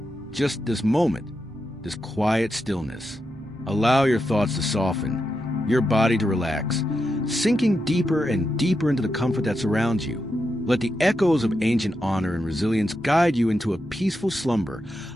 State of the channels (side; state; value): both; normal; correlation 0.86